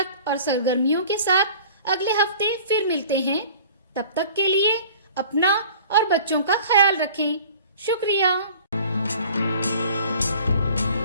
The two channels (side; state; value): both; inverted; correlation -0.46